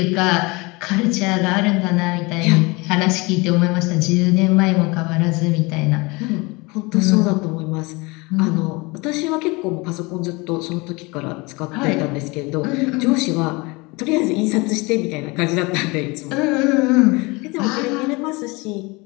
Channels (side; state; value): right; quieter; 25.5 dB